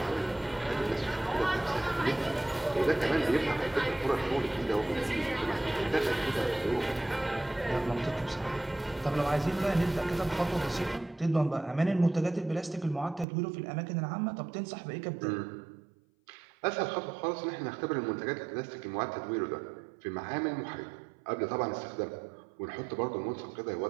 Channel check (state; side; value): drops out; left; at 13.2 s